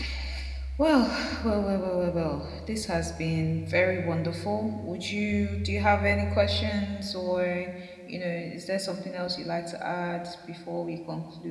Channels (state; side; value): identical; both; correlation 1.00